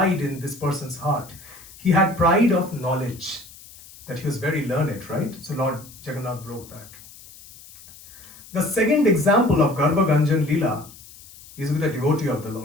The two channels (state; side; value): noise; left; hiss, 20 dB below the sound